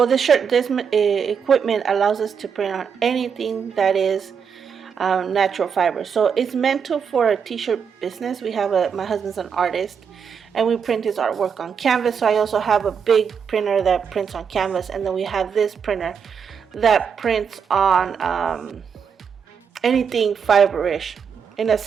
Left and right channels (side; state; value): left; quieter; 6.8 dB